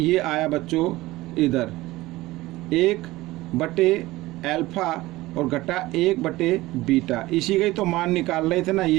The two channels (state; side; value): quieter; left; 18.6 dB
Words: आया बच्चों इधर 1/अल्फा और घटा 1/बीटा, इसी का ही तो मान निकाल रहे थे ना,